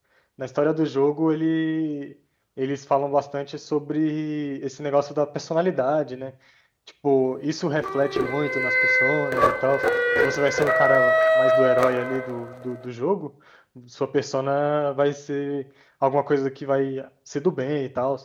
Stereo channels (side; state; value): both; identical; correlation 1.00